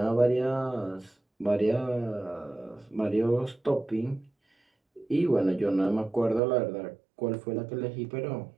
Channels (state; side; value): drops out; left; at 6.4 s